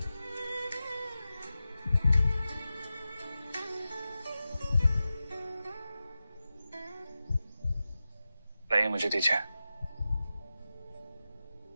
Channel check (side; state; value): both; inverted; correlation -0.93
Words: लाइए, मुझे दीजिए।